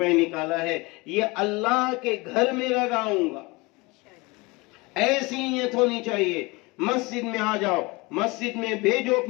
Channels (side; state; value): right; quieter; 24.7 dB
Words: نکالا ہے، یہ اللہ کے گھر میں لگاؤں گا۔ ایسی نیت ہونی چاہیے۔ مسجد میں آ جاؤ، مسجد میں بھیجو